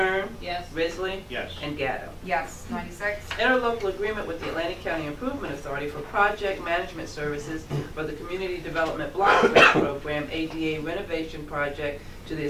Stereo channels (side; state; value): both; identical; correlation 1.00